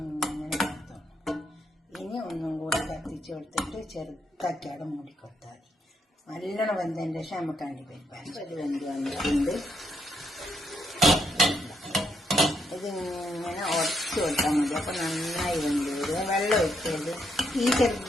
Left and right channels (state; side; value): normal; both; correlation 0.77